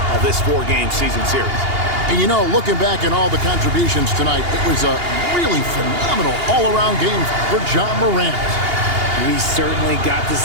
of this 4-game season series. And you know, looking back at all the contributions tonight, it was a really phenomenal all-around game for Ja Morant. We certainly got to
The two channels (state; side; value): late; left; 2.8 ms